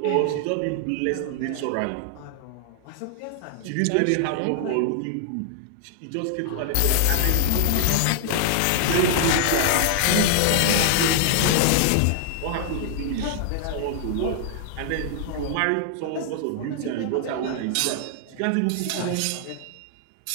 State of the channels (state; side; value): different; both; correlation -0.01